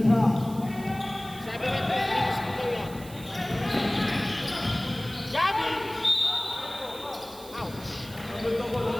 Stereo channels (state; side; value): noise; right; hiss, 18 dB below the sound